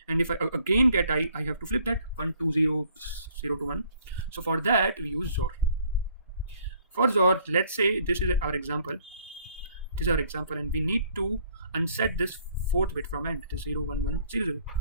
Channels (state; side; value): inverted; both; correlation -0.61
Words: and if I again get I have to flip that 1 2 0 0 to 1. So for that we use XOR. For XOR, let's say this is our example, and we need to unset this fourth bit from end, it is 0 1 1 0 0.